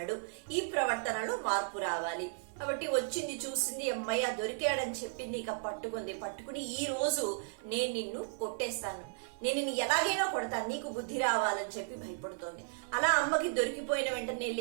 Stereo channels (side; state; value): left; silent; 55 dB below the other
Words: ఈ ప్రవర్తనలో మార్పు రావాలి. కాబట్టి వచ్చింది, చూసింది, అమ్మయ్య దొరికాడని చెప్పింది. ఇక పట్టుకుని ఈ రోజు నేను నిన్ను కొట్టేస్తాను, నేను నిన్ను ఎలాగైనా కొడతాను, నీకు బుద్ధి రావాలని చెప్పి భయపడుతోంది. అలా అమ్మకి దొరికిపోయిన వెంటనే,